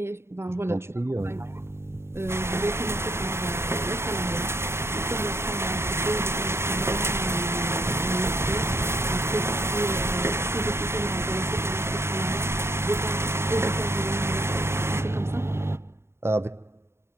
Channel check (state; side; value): late; left; 0.12 ms